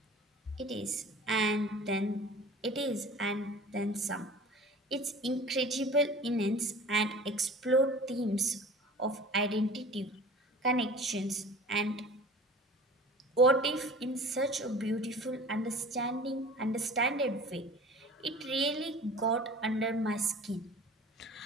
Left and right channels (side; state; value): both; normal; correlation 0.43